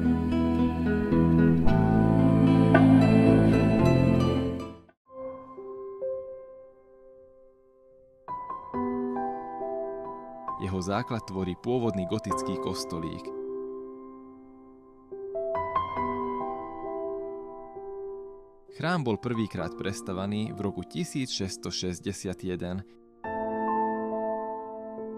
Jeho základ tvorí pôvodný gotický kostolík. Chrám bol prvýkrát prestavaný v roku 1661.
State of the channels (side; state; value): both; identical; correlation 1.00